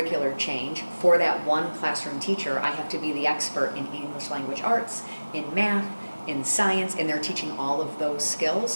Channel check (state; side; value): inverted; both; correlation -1.00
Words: change for that one classroom teacher, I have to be the expert in English language arts, in math, in science, and they're teaching all of those